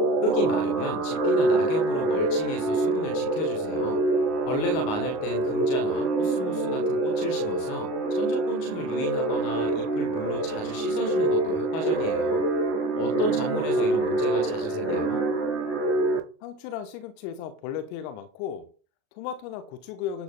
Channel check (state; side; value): late; right; 38 ms